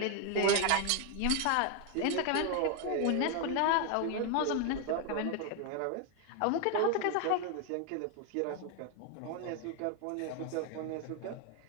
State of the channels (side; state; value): both; different; correlation 0.01